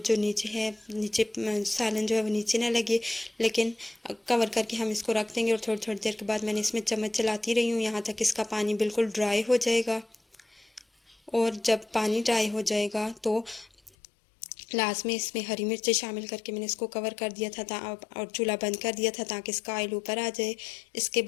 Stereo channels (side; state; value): right; drops out; at 13.9 s